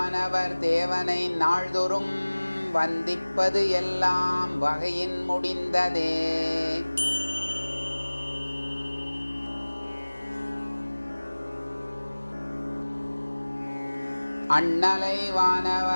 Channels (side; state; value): both; inverted; correlation -1.00